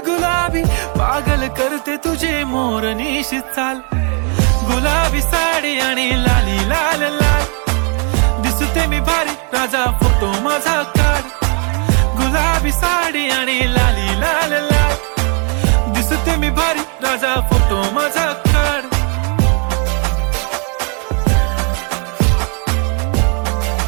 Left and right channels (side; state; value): left; quieter; 37.9 dB